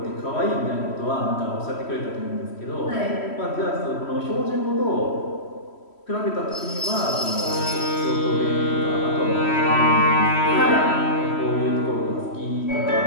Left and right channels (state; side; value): late; right; 3.1 ms